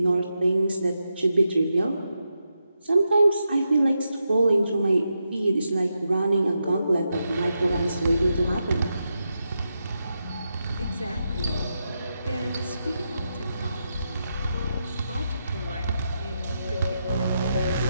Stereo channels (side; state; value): both; inverted; correlation -0.86